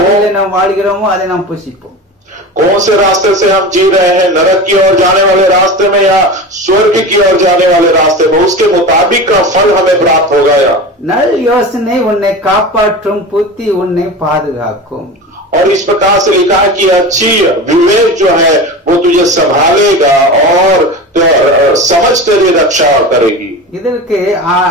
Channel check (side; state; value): both; normal; correlation 0.29